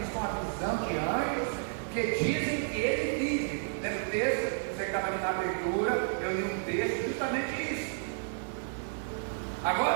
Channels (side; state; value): left; silent; digital silence